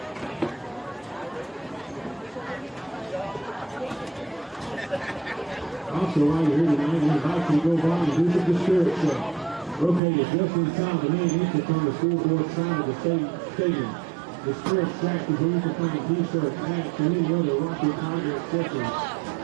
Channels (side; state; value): left; drops out; at 10.0 s